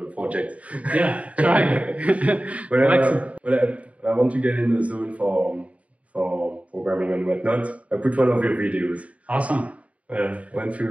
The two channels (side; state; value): left; late; 0.066 ms